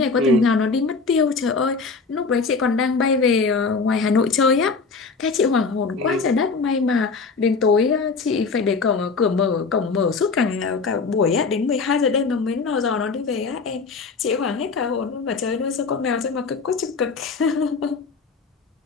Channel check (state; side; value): quieter; right; 4.5 dB